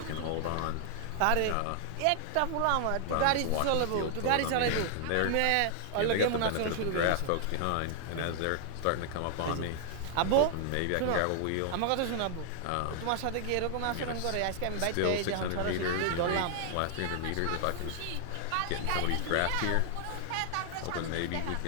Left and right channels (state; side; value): different; both; correlation 0.00